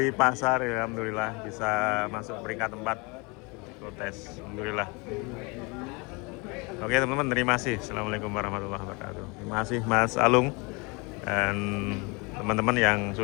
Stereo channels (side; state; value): right; quieter; 28.6 dB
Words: pasar ya, alhamdulillah bisa masuk peringkat 4 kontes. Alhamdulillah. Oke teman-teman, terima kasih. Assalamualaikum warahmatullahi wabarakatuh. Terima kasih Mas Alung dan teman-teman yang